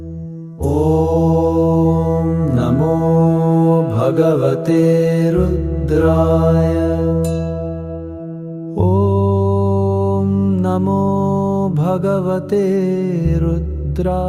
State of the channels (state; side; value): identical; both; correlation 1.00